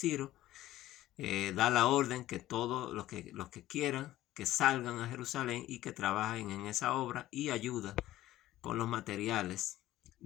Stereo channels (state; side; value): quieter; right; 14.9 dB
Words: da la orden que todos los que quieran que salgan a Jerusalén y que trabajen en esa obra y ayuda con los materiales